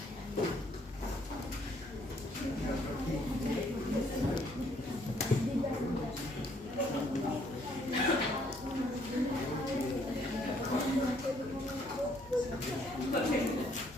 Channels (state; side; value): normal; both; correlation 0.66